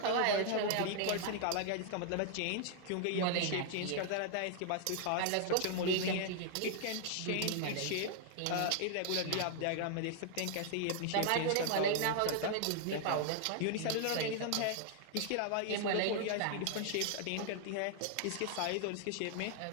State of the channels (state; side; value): different; both; correlation 0.00